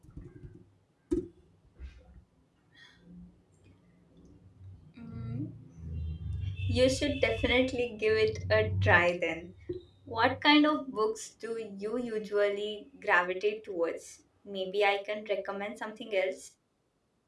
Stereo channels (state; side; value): identical; both; correlation 1.00